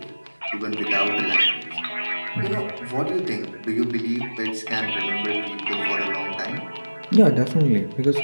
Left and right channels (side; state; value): both; inverted; correlation -1.00